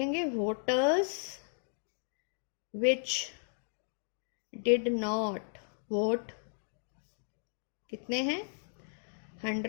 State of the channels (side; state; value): right; silent; digital silence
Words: voters which did not vote कितने हैं